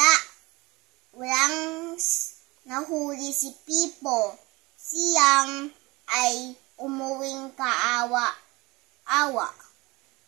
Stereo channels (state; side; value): quieter; left; 23.2 dB